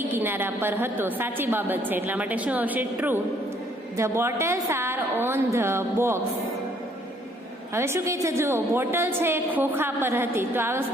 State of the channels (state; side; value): normal; both; correlation 0.64